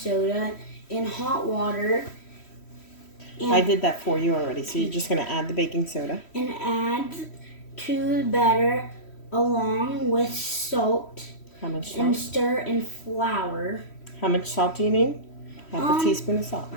in hot water. I did that for you already. So you're just gonna add the baking soda. And add to the batter along with salt. How much salt? And stir in flour. How much salt do you need? Half a teaspoon of salt.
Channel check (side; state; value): right; late; 3.1 ms